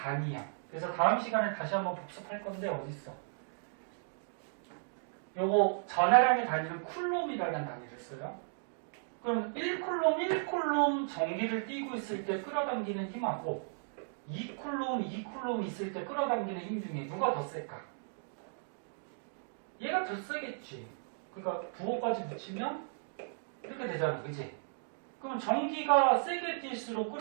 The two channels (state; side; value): silent; left; digital silence